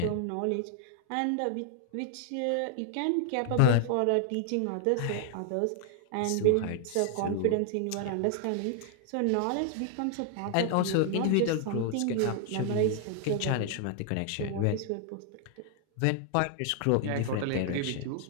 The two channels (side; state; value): both; different; correlation 0.00